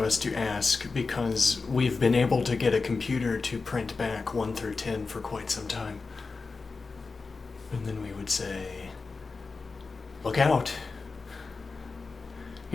us to ask because we've been able to get a computer to print back 1 through 10 for quite some time. And then we would say, look out.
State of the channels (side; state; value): right; quieter; 4.2 dB